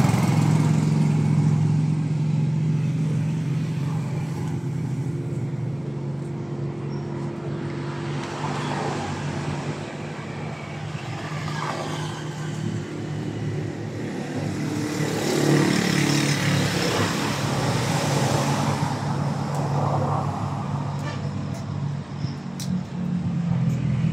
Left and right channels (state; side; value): noise; right; hum, 29 dB below the sound